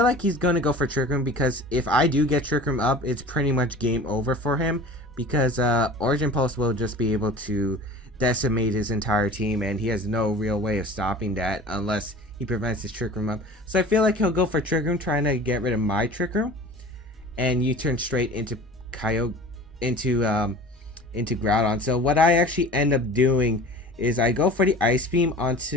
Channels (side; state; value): both; normal; correlation 0.40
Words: like he's going to go for Trick Room, because if I do get Trick Room up, it's pretty much game over for him, because Origin Pulse will just be able to decimate his entire team, and he has no real way of stopping that unless he prevents his Trick Room up. So I feel like he'll go for Trick Room, trying to get rid of my Trick Room, and U-turn straight into into Groudon. So what I actually end up doing is I go for the Ice Beam